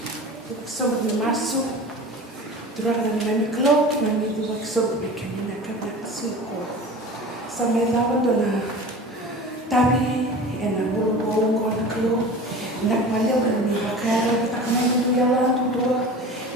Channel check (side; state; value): both; normal; correlation 0.36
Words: Sobre masuk, terus ada mami klok, mami tu sobre kami nak kena suku. Sampai lawan tu na, tapi enak bulu kau klok, nak balik kami bakar, tak kena tu jalan tu dua,